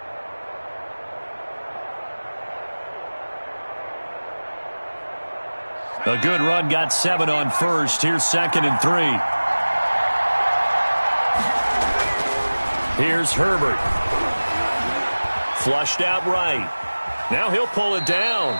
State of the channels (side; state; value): both; inverted; correlation -1.00